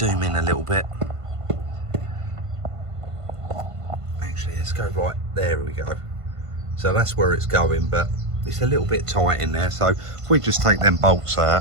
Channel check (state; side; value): late; left; 1.5 ms